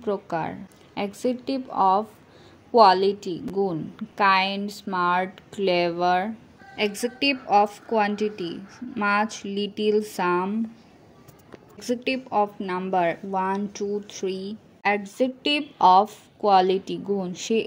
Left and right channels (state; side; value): identical; both; correlation 1.00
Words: প্রকার। অ্যাডজেক্টিভ অফ কোয়ালিটি গুণ, kind, smart, clever. Adjective of quantity much, little, some. Adjective of number 1, 2, 3। Adjective of quality গুণ, she